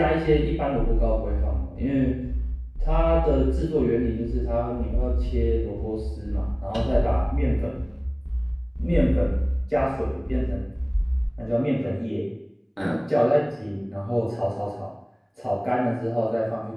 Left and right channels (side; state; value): both; identical; correlation 1.00